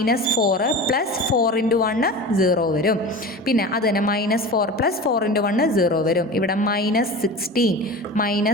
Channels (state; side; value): normal; both; correlation 0.32